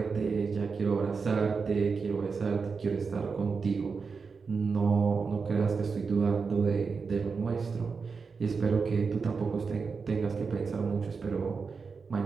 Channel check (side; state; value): left; quieter; 5.1 dB